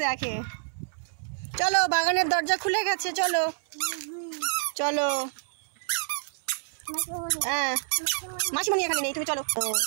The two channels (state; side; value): silent; left; 60 dB below the other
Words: দেখে। চলো, বাগানের দরজা খুলে গেছে, চলো চলো। হ্যাঁ, মাসিমণি এখানে নেই, তুমি চলো।